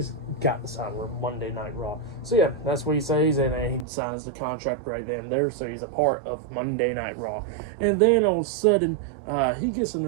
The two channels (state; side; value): drops out; left; at 3.9 s